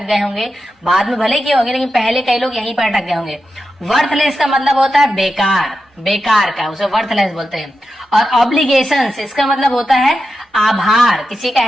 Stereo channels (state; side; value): normal; both; correlation 0.89